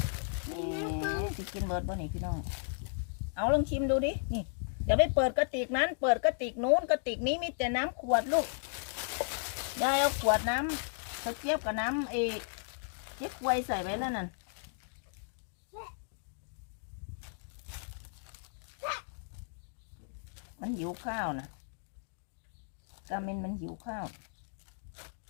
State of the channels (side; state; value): right; silent; digital silence